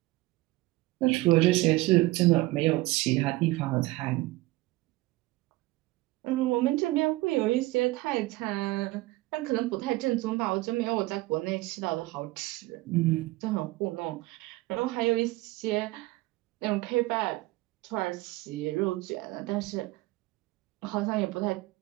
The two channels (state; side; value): quieter; left; 19.7 dB